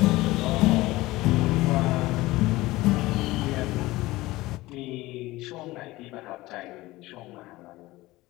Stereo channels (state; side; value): quieter; right; 19.0 dB